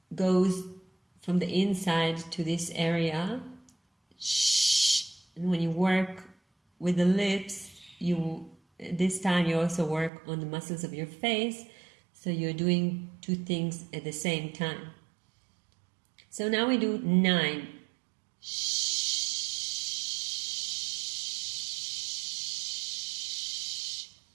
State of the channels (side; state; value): left; drops out; at 10.1 s